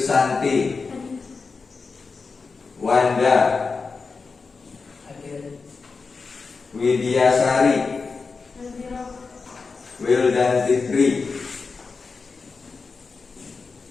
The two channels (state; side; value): quieter; right; 4.6 dB